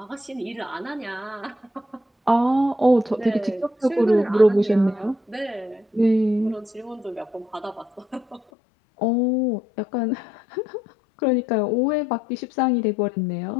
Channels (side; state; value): right; drops out; at 8.4 s